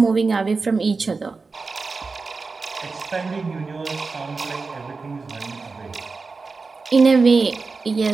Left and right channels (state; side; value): quieter; left; 4.2 dB